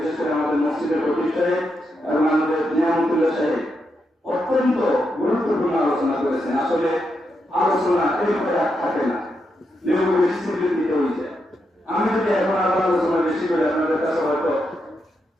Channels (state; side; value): normal; both; correlation 0.83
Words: করে আমাদের মসজিদের খতিব সাহেব এবং আমাদের নিয়ামতুল্লাহ সাহেব অত্যন্ত গুরুত্বপূর্ণ আলোচনা করেছেন। আসলে আলোচনা এইভাবে আর থাকে না, দিতে হয়েছে। আমি যদি এখন আবার আলোচনা বেশি করে আপনাদের কাছে হয়তো